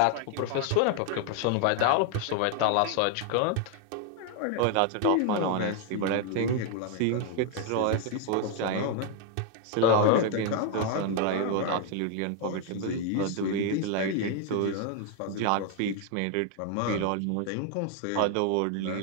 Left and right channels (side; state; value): both; different; correlation 0.00